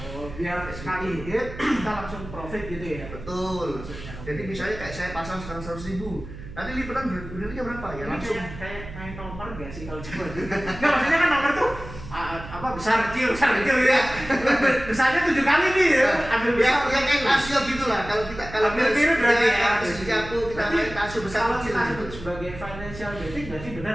Oh, biar sekali hit kita langsung profit gitu ya. Betul. Jadi misalnya kayak saya pasang sekarang 100.000. Nanti lipatan berdirinya berapa ya? Langsung kayak main nomor gak sih kalau coba dulu? Nggak, maksudnya kan nomor tuh apa besar kecil ya. Besarnya 7 kali nih ya. Ambil besar. Ya kayak tasio gitulah. Kalau ambil tiru berarti ya. Kita main tasio besar kalau kecil. Kita sebut sebagai financial betting berarti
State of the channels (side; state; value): right; noise; hum, 13 dB below the sound